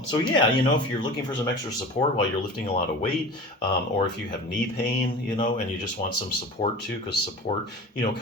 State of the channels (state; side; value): normal; both; correlation 0.36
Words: So yeah, if you're looking for some extra support while you're lifting a lot of weight, or if you have knee pain, and you just want some support too, because support,